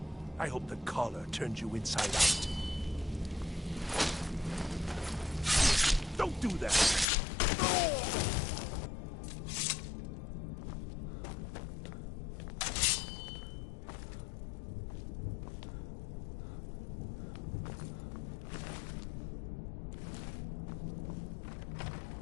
I hope the collar turns you inside out. Don't do that! No!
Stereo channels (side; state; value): right; drops out; at 7.1 s